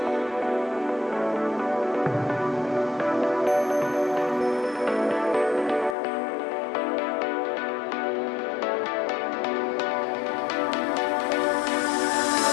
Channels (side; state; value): right; drops out; at 6.0 s